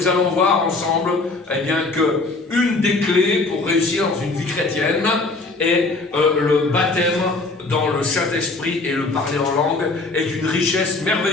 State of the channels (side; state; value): right; quieter; 3.5 dB